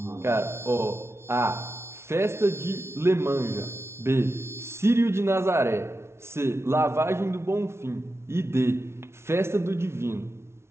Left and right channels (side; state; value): left; late; 0.13 ms